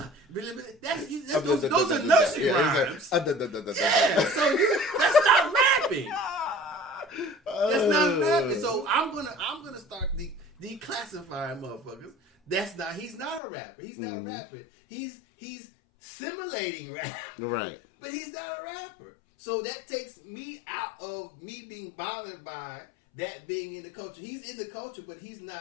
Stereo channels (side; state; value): right; drops out; at 13.4 s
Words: those are nursery rhymes. Yeah, so that's not rapping. That's not rapping. So I'm gonna start declassifying motherfuckers. He's not a rapper. He's not rapping. He's simulating rap. Right. But he's not a rapper. So that takes me out of me being bothered by that being in the culture. He's in the culture, but he's